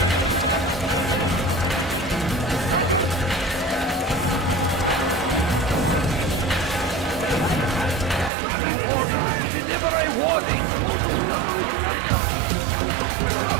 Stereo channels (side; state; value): left; drops out; at 8.3 s